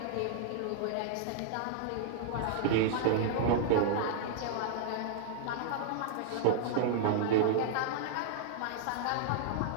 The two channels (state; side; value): different; both; correlation -0.01